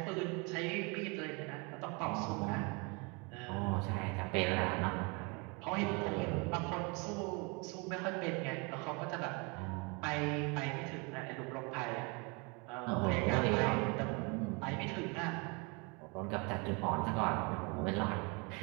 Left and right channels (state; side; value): quieter; left; 30.6 dB